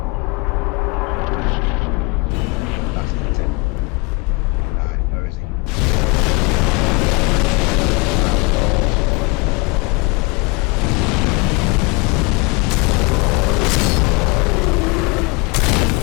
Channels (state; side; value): quieter; right; 27.7 dB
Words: That's the tip. Right, where is he?